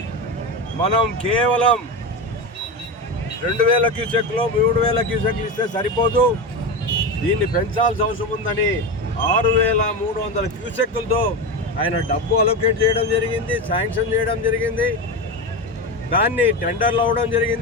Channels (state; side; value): normal; both; correlation 0.19